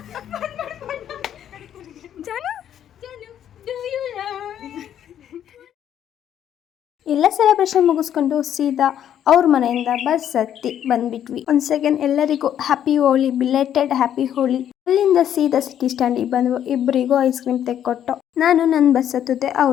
ಎಲ್ಲ ಸೆಲೆಬ್ರೇಷನ್ ಮುಗಿಸ್ಕೊಂಡು ಸೀದಾ ಅವ್ರ ಮನೆಯಿಂದ ಬಸ್ ಹತ್ತಿ ಬಂದ್ಬಿಟ್ವಿ. ಒಂದು ಸೆಕೆಂಡ್ ಎಲ್ಲರಿಗೂ ಹ್ಯಾಪಿ ಹೋಲಿ, ಬಿಲೇಟೆಡ್ ಹ್ಯಾಪಿ ಹೋಲಿ. ಅಲ್ಲಿಂದ ಸೀದಾ ಸಿಟಿ ಸ್ಟ್ಯಾಂಡಿಗೆ ಬಂದ್ವು. ಇಬ್ಬರಿಗೂ ಐಸ್ ಕ್ರೀಮ್ ತೆಕ್ಕೊಟ್ಟು ನಾನು ನನ್ನ ಬಸ್ ಹತ್ತಿದ್ದೆ,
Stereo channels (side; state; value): right; quieter; 10.1 dB